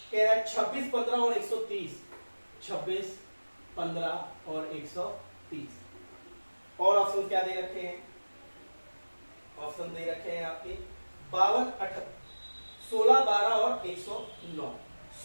कह रहा है 26, 15 और 130, 26, 15 और 130। और ऑप्शन क्या दे रखे हैं, ऑप्शन दे रखे हैं आपके 52, 18, 16, 12 और 109,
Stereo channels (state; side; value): inverted; both; correlation -1.00